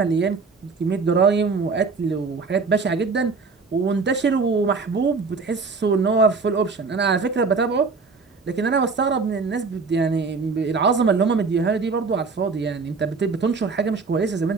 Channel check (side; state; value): left; quieter; 4.5 dB